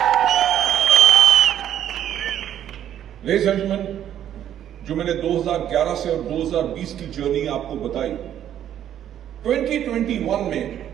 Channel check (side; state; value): left; quieter; 10.6 dB